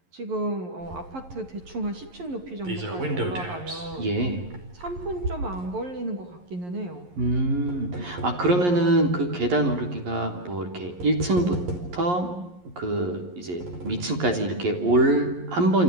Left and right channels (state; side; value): late; left; 11 ms